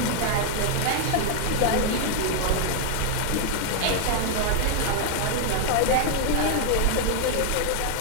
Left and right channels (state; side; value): different; both; correlation 0.00